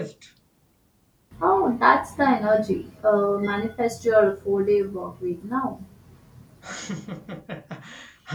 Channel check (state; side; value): identical; both; correlation 1.00